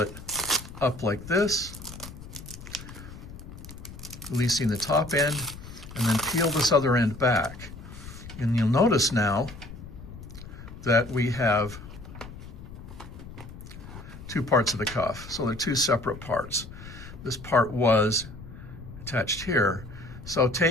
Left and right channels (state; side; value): noise; left; rumble, 14 dB below the sound